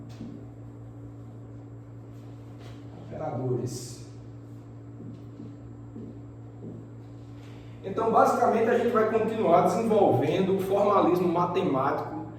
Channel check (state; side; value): identical; both; correlation 1.00